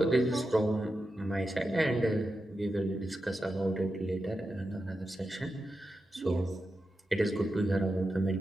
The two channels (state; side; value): normal; both; correlation 0.89